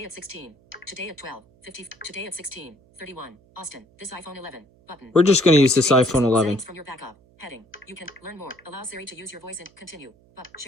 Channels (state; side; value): noise; right; hum, 29 dB below the sound